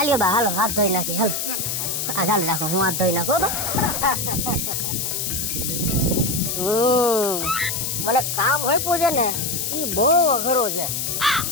બા હાલો હાથ ધોઈ નાખી હાલો આ ચાલ રાખો હું હાથ ધોઈ નાખો બા મને કામ હોય પૂછે ને ઈ બહુ અઘરો છે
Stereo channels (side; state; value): left; noise; hiss, 1 dB below the sound